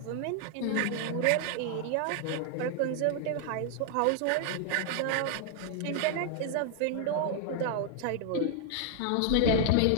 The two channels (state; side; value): different; both; correlation 0.00